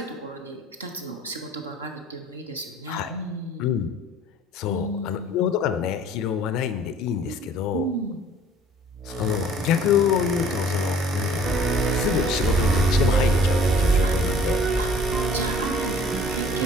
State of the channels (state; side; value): normal; both; correlation 0.52